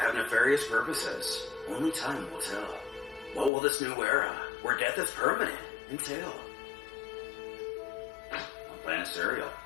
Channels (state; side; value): drops out; right; at 3.5 s